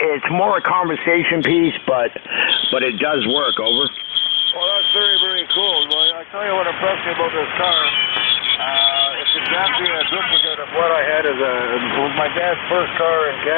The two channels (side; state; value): right; quieter; 27.4 dB